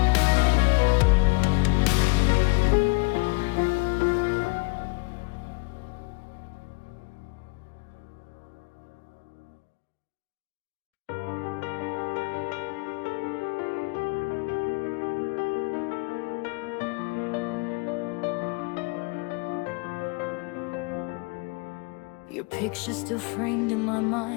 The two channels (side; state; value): right; quieter; 28.6 dB